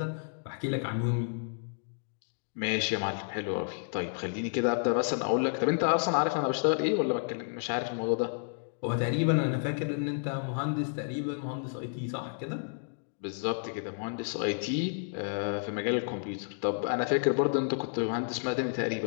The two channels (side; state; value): right; silent; digital silence